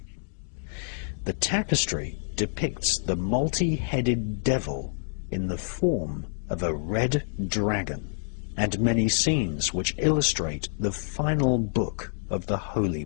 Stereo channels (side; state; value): right; silent; digital silence